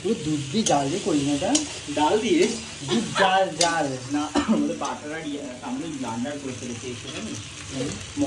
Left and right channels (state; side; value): identical; both; correlation 1.00